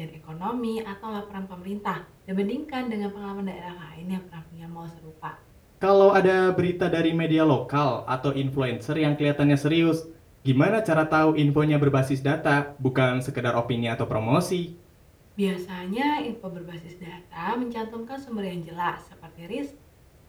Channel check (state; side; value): identical; both; correlation 1.00